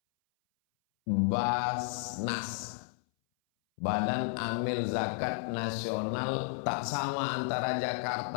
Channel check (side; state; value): right; silent; 56 dB below the other